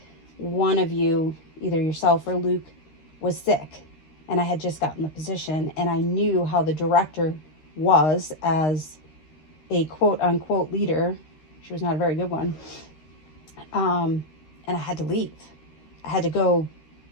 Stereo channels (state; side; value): late; right; 13 ms